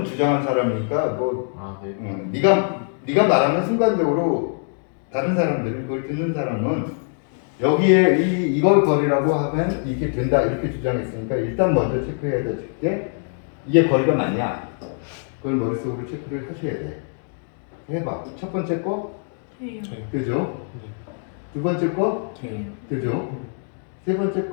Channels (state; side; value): silent; right; 58 dB below the other